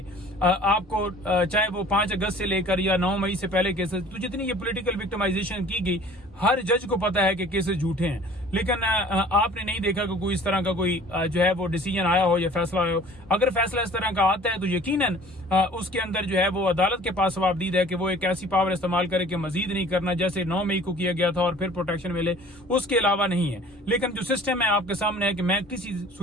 आपको चाहे वो 5 अगस्त से लेकर या 9 मई से पहले केसेस, तो जितनी ये पॉलिटिकल विक्टिमाइजेशन की गई, हर जज को पता है कि केसेस झूठे हैं। लेकिन आपने नहीं देखा कि कोई इस तरह का कोई जो है वो डिसीजन आया हो या फैसला आया हो। अगर फैसला इस तरह का आता है तो यकीनन उसके अंदर जो है वो अदालत के पास जवाबदीद है कि वो एक ऐसी पावर इस्तेमाल करे कि मजीद नहीं करना, जैसे 9 मई को किया गया था और फिर प्रोटेक्शन मिले, उसके अलावा नहीं है। लेकिन जो सिस्टम है आपके सामने है कि मैं किसी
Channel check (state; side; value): normal; both; correlation 0.48